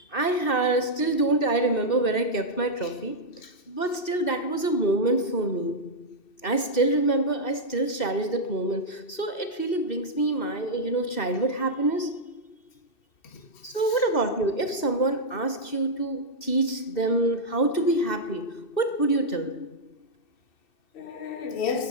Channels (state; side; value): late; right; 2.6 ms